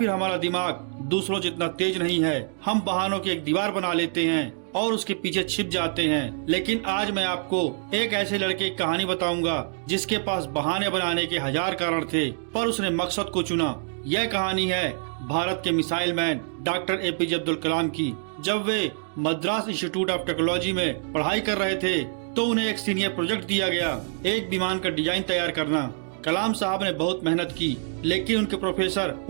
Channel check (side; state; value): left; silent; digital silence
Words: हमारा दिमाग दूसरों जितना तेज नहीं है। हम बहानों की एक दीवार बना लेते हैं और उसके पीछे छिप जाते हैं। लेकिन आज मैं आपको एक ऐसे लड़के की कहानी बताऊंगा जिसके पास बहाने बनाने के हजार कारण थे, पर उसने मकसद को चुना। यह कहानी है भारत के missile man doctor APJ Abdul Kalam की। जब वे मद्रास इंस्टीट्यूट ऑफ टेक्नोलॉजी में पढ़ाई कर रहे थे तो उन्हें एक सीनियर प्रोजेक्ट दिया गया, एक विमान का डिजाइन तैयार करना। कलाम साहब ने बहुत मेहनत की, लेकिन उनके प्रोफेसर